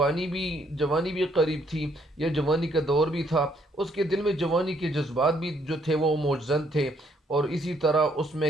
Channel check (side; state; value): both; normal; correlation 0.69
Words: بھی قریب تھی، یا جوانی کا دور بھی تھا، اس کے دل میں جوانی کے جذبات بھی جو تھے وہ موجزن تھے، اور اسی طرح اس میں